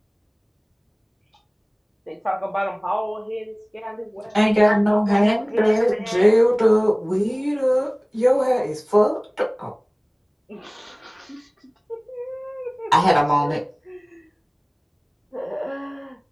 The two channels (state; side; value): identical; both; correlation 1.00